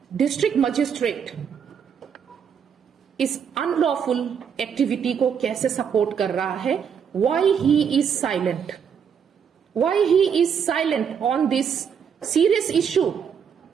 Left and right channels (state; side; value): quieter; left; 7.4 dB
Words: डिस्ट्रिक्ट मजिस्ट्रेट इस अनलॉफुल एक्टिविटी को कैसे सपोर्ट कर रहा है। Why he is silent, why he is silent on this serious issue,